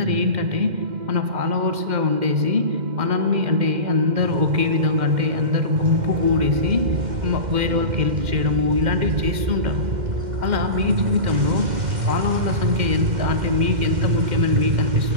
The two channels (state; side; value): late; left; 2.1 ms